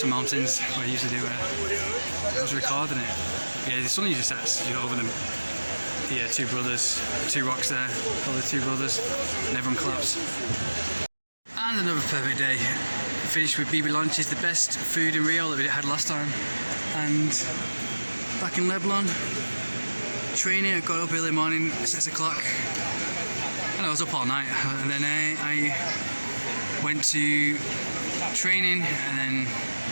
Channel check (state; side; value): inverted; both; correlation -1.00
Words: mountains where I used to do I was recording it. Yeah, the sun usually sets over them. Yeah, two brothers, two rocks there, all the two brothers, and everyone claps. And another perfect day. Finished with BB lunches, the best food in Rio that we had last time. And back in Lebanon, training. I got up early morning, 6 o'clock. And I was up all night. And then I went to training and then